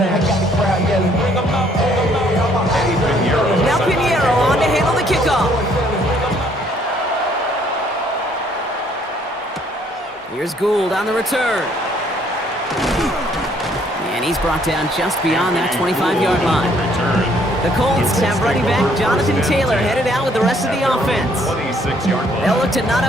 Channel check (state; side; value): normal; both; correlation 0.64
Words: I got the crowd yelling, bring 'em out, bring 'em out. Now Piniero on to handle the kickoff. Here's Gould on the return. And he's brought down just beyond that 25-yard line. The Colts have running back Jonathan Taylor headed out with the rest of the offense. They'll look to knot